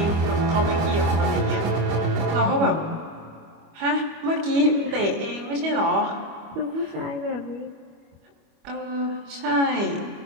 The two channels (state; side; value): late; left; 25 ms